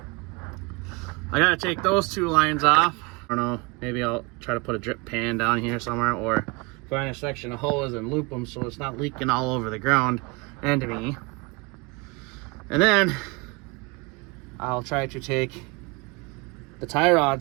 I gotta take those two lines off. I don't know, maybe I'll try to put a drip pan down here somewhere, or find a section of hose and loop them so it's not leaking all over the ground and to me. And then I'll try to take the tie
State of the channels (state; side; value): quieter; left; 27.5 dB